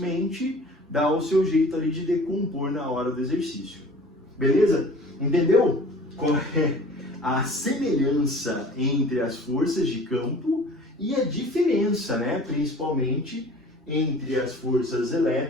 dá o seu jeito ali de decompor na hora do exercício. Beleza? Entendeu qual é a semelhança entre as forças de campo e a diferença, né, principalmente entre as forças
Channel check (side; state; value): both; normal; correlation 0.46